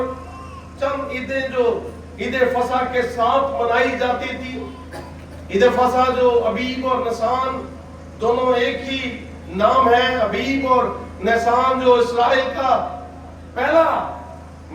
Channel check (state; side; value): identical; both; correlation 1.00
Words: چند عیدیں جو عید فصح کے ساتھ منائی جاتی تھی. عید فصح جو ابیب اور نسان دونوں ایک ہی نام ہے. ابیب اور نسان جو اسرائیل کا پہلا